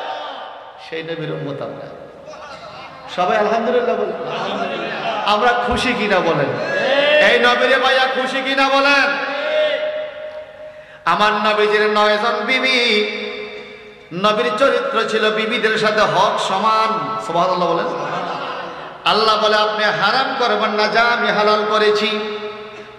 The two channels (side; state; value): both; identical; correlation 1.00